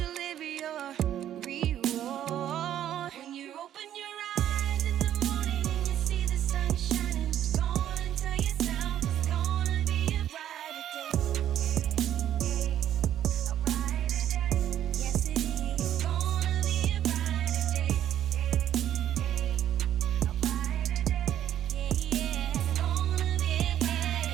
your reward. When you open your eyes in the morning and you see the sun shining, go on and tell yourself it's gonna be a brighter day. A brighter day. Yes, it is. It's gonna be a brighter day. A brighter day. Yeah, yeah. It's gonna be a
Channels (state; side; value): quieter; left; 11.2 dB